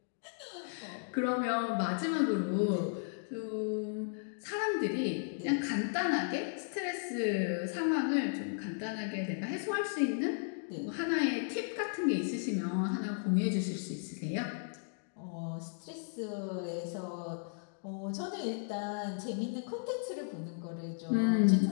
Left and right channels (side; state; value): right; silent; digital silence